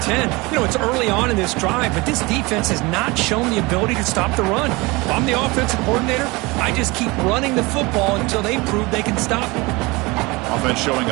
10. You know, it's early on in this drive, but this defense has not shown the ability to stop the run. If I'm the offensive coordinator, I just keep running the football until they prove they can stop it. Offense showing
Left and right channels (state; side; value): quieter; left; 24.1 dB